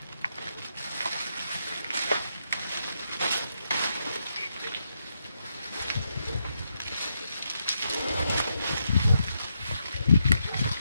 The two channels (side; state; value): both; inverted; correlation -0.81